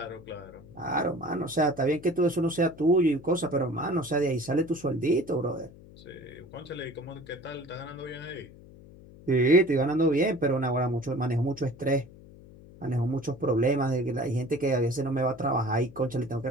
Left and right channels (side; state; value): left; noise; hum, 20 dB below the sound